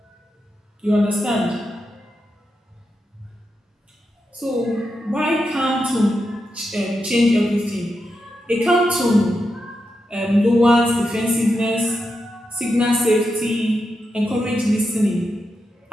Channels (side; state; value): both; normal; correlation 0.87